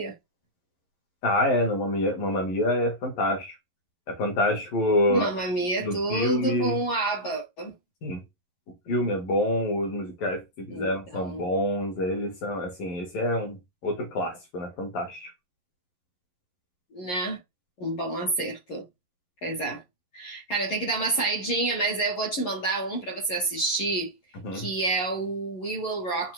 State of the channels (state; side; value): late; right; 11 ms